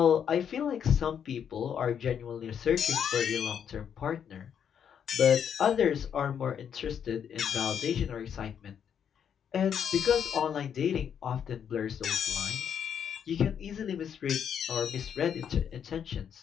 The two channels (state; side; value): quieter; right; 8.2 dB